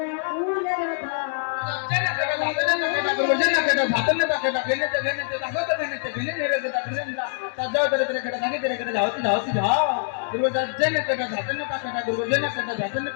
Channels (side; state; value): right; silent; digital silence